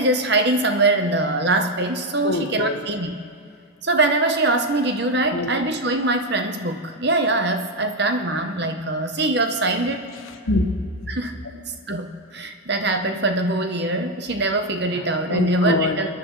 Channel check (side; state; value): both; normal; correlation 0.07